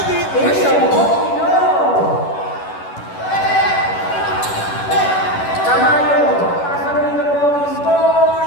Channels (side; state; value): right; late; 11 ms